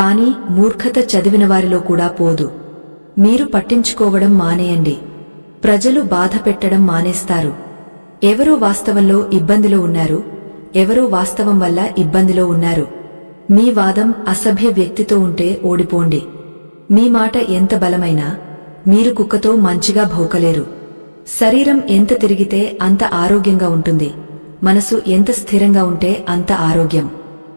మూర్ఖత చదివినవారిలో కూడా పోదు. మీరు పట్టించుకోవడం మానేయండి. ప్రజలు బాధ పెట్టడం మానేస్తారు. ఎవరో వాస్తవంలో ఇబ్బందిలో ఉన్నారు, ఎవరో వాస్తవం వల్ల ఇబ్బందిలో ఉన్నారు. మీ వాదం అసభ్య వ్యక్తితో ఉంటే ఓడిపోండి. మీ మాట ఎంత బలమైనా మీరు కుక్కతో మంచిగా భౌకలేరు. శరీరం ఎంత తిరిగితే అంత ఆరోగ్యంగా ఉంటుంది, మనసు ఎంత స్థిరంగా ఉంటే అంత ఆరోగ్యం.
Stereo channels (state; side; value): inverted; both; correlation -1.00